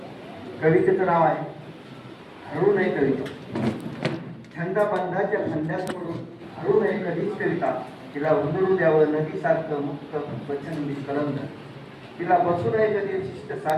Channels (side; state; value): both; identical; correlation 1.00